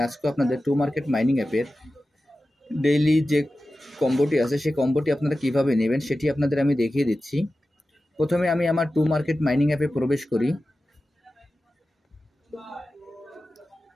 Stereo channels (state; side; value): normal; both; correlation 0.94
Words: আজকেও আপনাদের টু মার্কেট মাইনিং অ্যাপের ডেইলি যে কম্বোটি আছে সেই কম্বোটি আপনারা কিভাবে নেবেন সেটি আপনাদের আমি দেখিয়ে দিচ্ছি। প্রথমে আমি আমার টু মার্কেট মাইনিং অ্যাপে প্রবেশ করি।